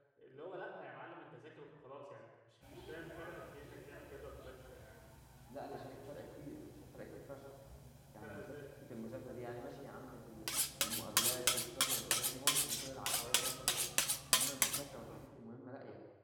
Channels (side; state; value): both; identical; correlation 1.00